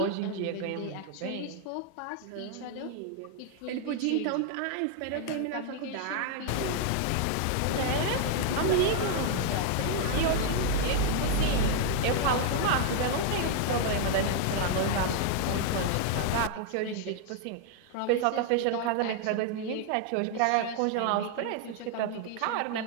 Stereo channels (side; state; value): both; different; correlation 0.00